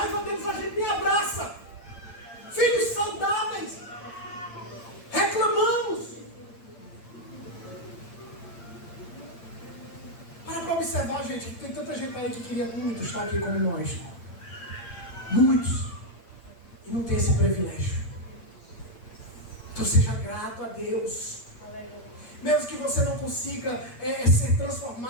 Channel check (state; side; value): late; right; 8.7 ms